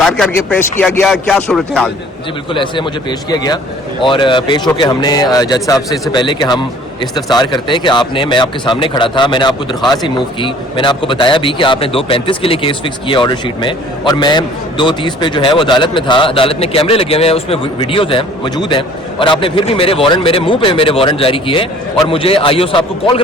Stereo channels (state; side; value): normal; both; correlation 0.52